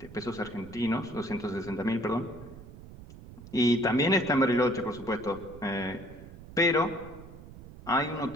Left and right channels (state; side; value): noise; right; rumble, 16 dB below the sound